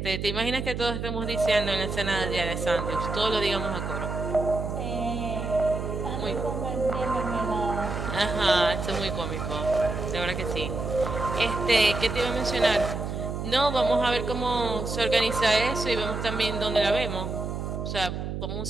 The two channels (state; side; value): noise; right; hum, 4 dB below the sound